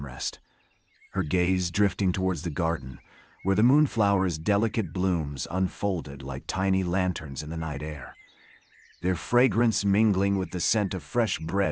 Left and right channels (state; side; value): identical; both; correlation 1.00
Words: her gaze drifting towards the garden, where the moonflower's delicate blooms unfolded like tiny lanterns in the night air, their fragrance mingling with the scent of fresh